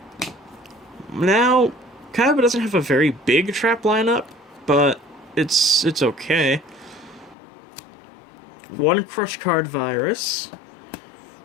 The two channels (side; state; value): right; drops out; at 7.4 s